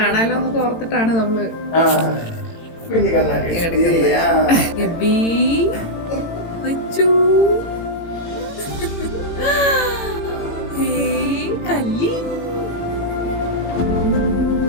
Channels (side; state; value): right; late; 18 ms